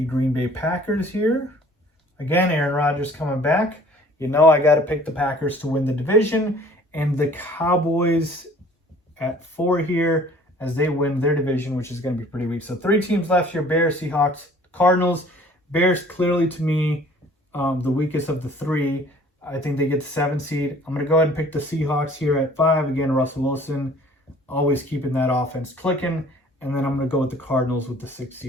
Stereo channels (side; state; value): both; normal; correlation 0.52